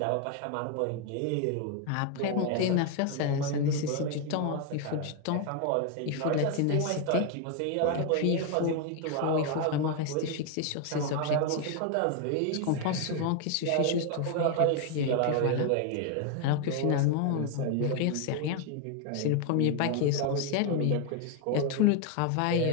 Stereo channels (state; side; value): different; both; correlation 0.00